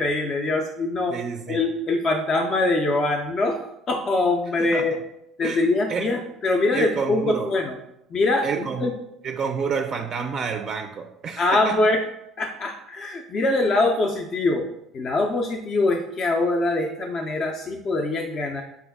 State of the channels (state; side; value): normal; both; correlation 0.67